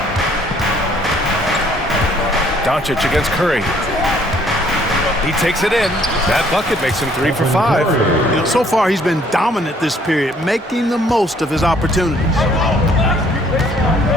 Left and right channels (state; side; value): normal; both; correlation 0.62